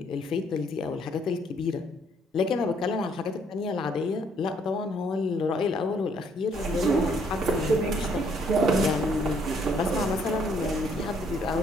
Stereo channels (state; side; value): normal; both; correlation 0.67